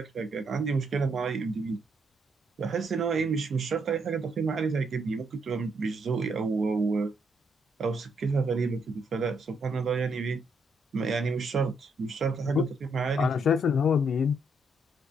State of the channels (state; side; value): normal; both; correlation 0.75